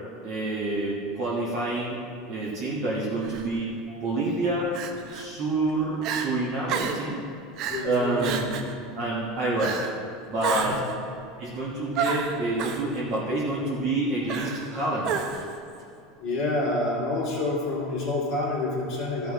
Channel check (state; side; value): normal; both; correlation 0.31